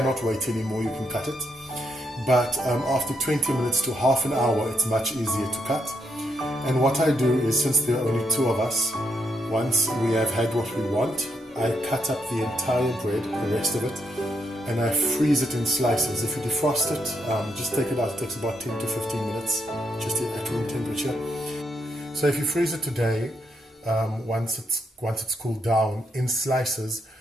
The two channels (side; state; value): both; normal; correlation 0.78